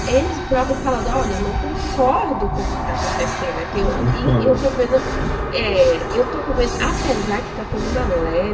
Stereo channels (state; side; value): identical; both; correlation 1.00